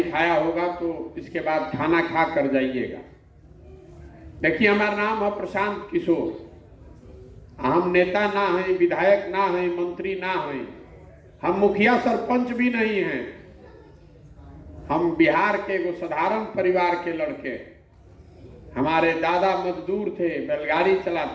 खाया होगा तो इसके बाद खाना खा कर जाइएगा। देखिए, हमारा नाम है प्रशांत किशोर। हम नेता ना हैं, विधायक ना हैं, मंत्री ना हैं, हम मुखिया सरपंच भी नहीं हैं। हम बिहार के एगो साधारण परिवार के लड़के। हमारे दादा मजदूर थे, बैलगाड़ी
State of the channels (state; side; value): identical; both; correlation 1.00